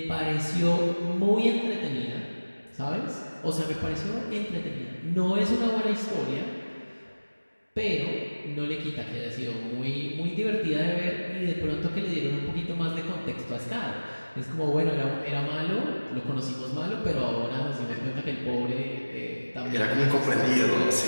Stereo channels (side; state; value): both; inverted; correlation -1.00